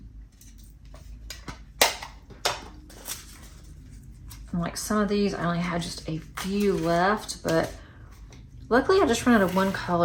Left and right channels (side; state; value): both; identical; correlation 1.00